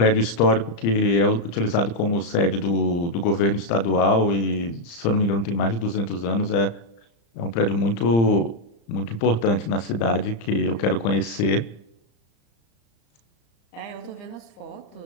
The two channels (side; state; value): right; late; 35 ms